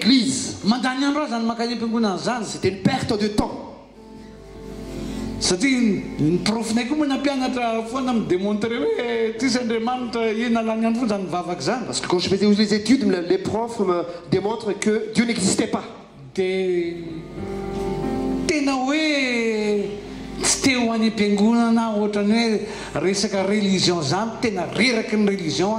C'était une perte de temps. Parce que quand je faisais les études, les profs me démontrent que Dieu n'existait pas. teo any am-piangonana ohatrany hoe resaka religion zany tena reraky ny religion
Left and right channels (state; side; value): identical; both; correlation 1.00